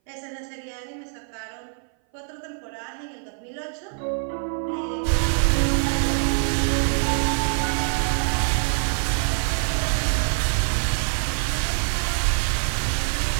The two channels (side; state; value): left; silent; 59 dB below the other